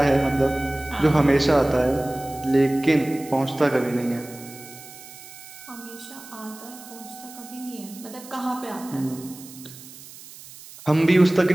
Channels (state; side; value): noise; right; hiss, 17 dB below the sound